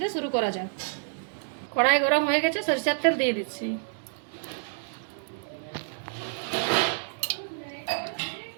শুরু করা যাক। কড়াই গরম হয়ে গেছে, সরিষার তেল দিয়ে দিচ্ছি।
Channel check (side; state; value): left; silent; digital silence